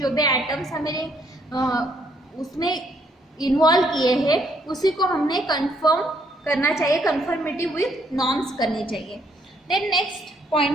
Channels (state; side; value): normal; both; correlation 0.70